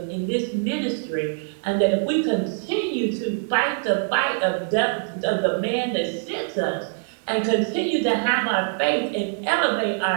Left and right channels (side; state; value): left; silent; digital silence